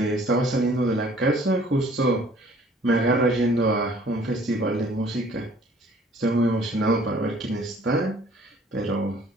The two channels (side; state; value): both; normal; correlation 0.55